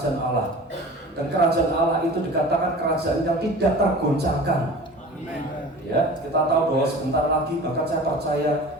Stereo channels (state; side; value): normal; both; correlation 0.39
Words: Allah. Dan kerajaan Allah itu dikatakan kerajaan yang tidak tergoncangkan. Ya, kita tahu bahwa sebentar lagi, bahkan saya percaya